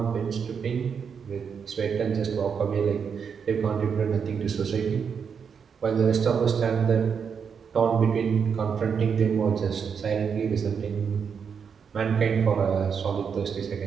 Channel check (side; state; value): left; quieter; 6.6 dB